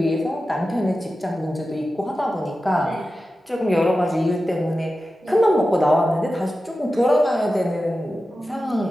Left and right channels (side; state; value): both; normal; correlation 0.93